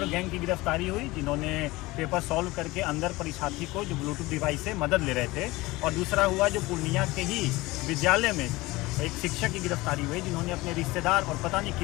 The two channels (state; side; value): quieter; right; 20.8 dB